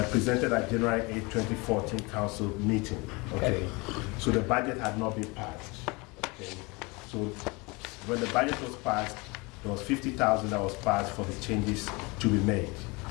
Presented at January 8, 2014 council meeting. Okay. So the budget had not been passed. Okay. So when the budget was passed, there was $50,000 that was passed for the changes to be made.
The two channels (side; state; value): right; quieter; 26.5 dB